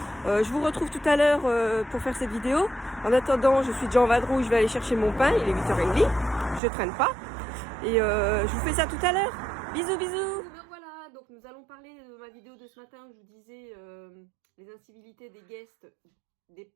Je vous retrouve tout à l'heure pour faire cette vidéo. En attendant, je suis déjà en vadrouille, je vais aller chercher mon pain, il est 8h30, je traîne pas. Et je vous fais ça tout à l'heure. Bisous, bisous. Voilà, donc nous allons parler de ma vidéo de ce matin où je vous disais les incivilités des guests, des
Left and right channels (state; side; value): drops out; left; at 6.6 s